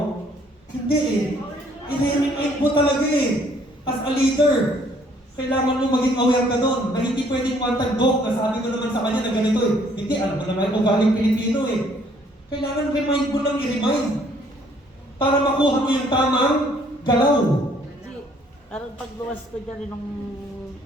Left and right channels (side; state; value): both; normal; correlation 0.63